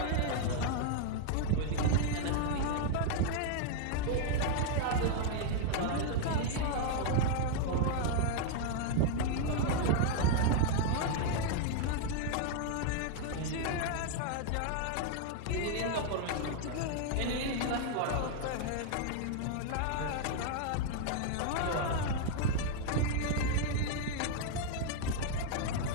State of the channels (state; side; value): different; both; correlation 0.00